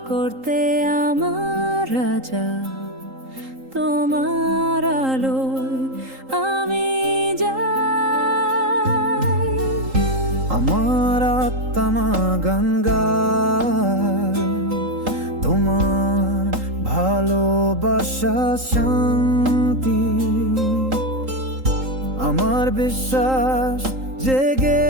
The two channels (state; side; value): late; left; 3.8 ms